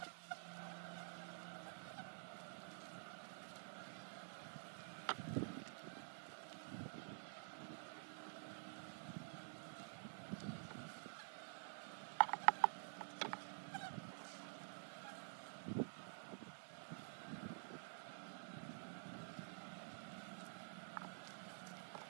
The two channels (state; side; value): silent; left; digital silence